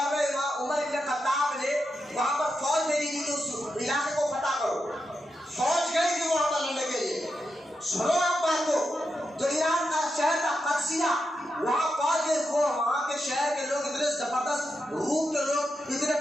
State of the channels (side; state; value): both; normal; correlation 0.87